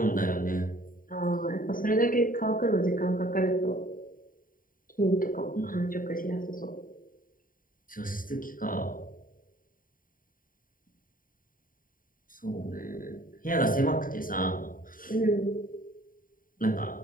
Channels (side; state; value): right; late; 0.40 ms